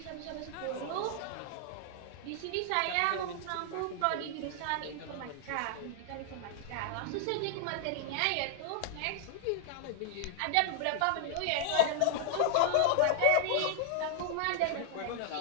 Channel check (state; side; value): different; both; correlation -0.01